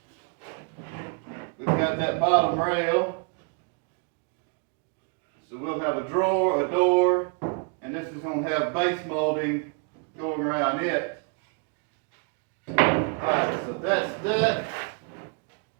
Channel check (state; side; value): quieter; left; 37.2 dB